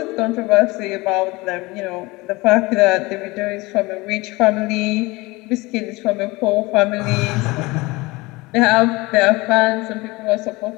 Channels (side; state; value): right; quieter; 22.7 dB